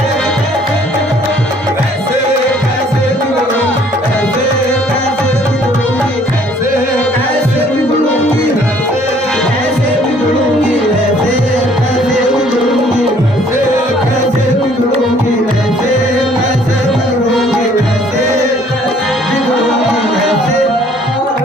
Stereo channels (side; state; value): both; normal; correlation 0.59